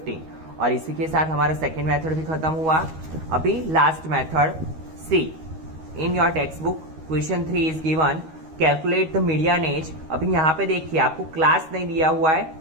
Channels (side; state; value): left; late; 13 ms